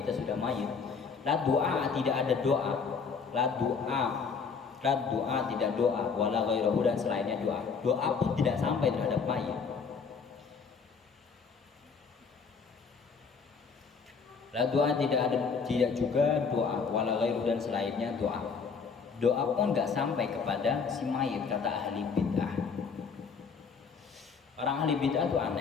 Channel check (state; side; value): quieter; right; 5.5 dB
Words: ya sudah mayit. La doa, tidak ada doa. La doa tidak doa. Wala ghairahu, dan selainnya doa. Doa pun tidak sampai terhadap mayit. La doa tidak ada, tidak juga doa. Wala ghairuhu, dan selainnya doa. Doa pun nggak sampai kepada si mayit, kata ahli bid'ah. Orang ahli bid'ah tuh